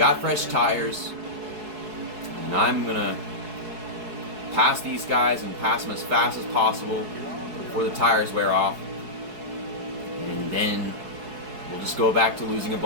fresh tires. And I'm going to pass these guys and pass them as fast as possible before the tires wear off. And then we'll just go back to losing a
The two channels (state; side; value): late; left; 4.7 ms